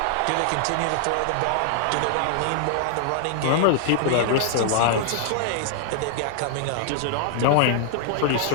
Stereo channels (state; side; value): different; both; correlation -0.01